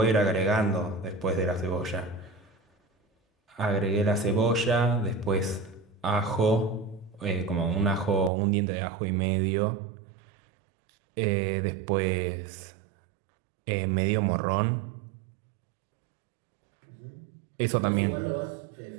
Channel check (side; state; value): left; drops out; at 8.3 s